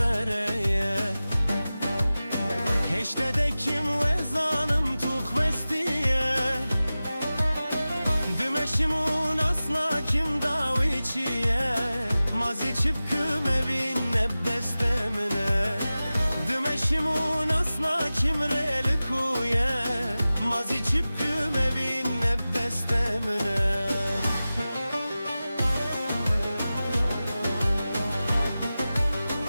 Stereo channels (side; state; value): both; inverted; correlation -0.96